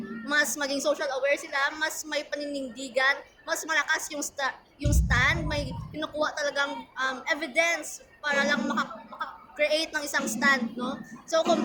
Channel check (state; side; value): identical; both; correlation 1.00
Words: mas maging social aware sila, mas may paninindigan, mas malakas yung stand, may pinukuha talagang evidence para lang maka-create ng isang stand, no? So,